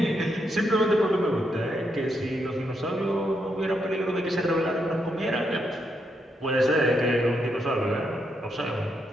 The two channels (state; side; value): normal; both; correlation 0.80